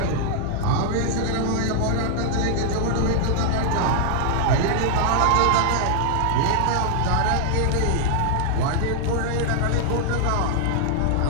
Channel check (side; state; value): both; different; correlation -0.01